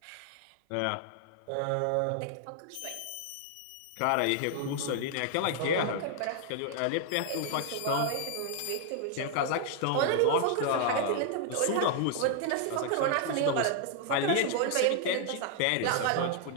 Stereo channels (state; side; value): different; both; correlation 0.00